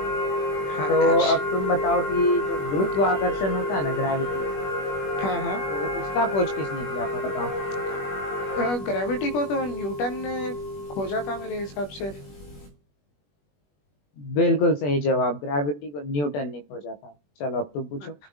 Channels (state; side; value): late; right; 21 ms